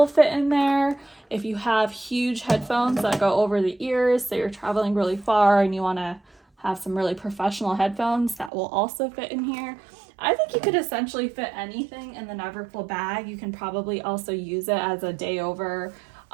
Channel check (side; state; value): left; drops out; at 8.5 s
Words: fit in there. If you have huge headphones that go over the ears, so you're traveling really far and you want to have some really professional headphones, that will also fit in here. I think you could essentially fit anything in the Neverfull bag. You can probably also use it as a day over,